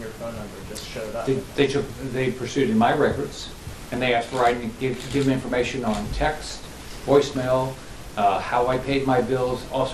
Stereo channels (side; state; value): both; identical; correlation 1.00